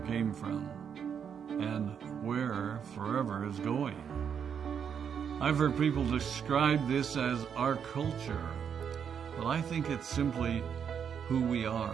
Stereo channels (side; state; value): left; quieter; 7.6 dB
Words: came from and where Forever is going. I've heard people describe this as our culture, but I think it's simply who we